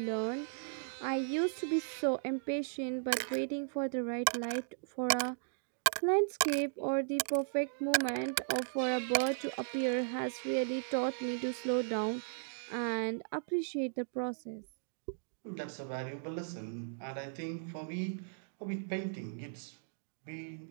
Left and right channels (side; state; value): left; silent; digital silence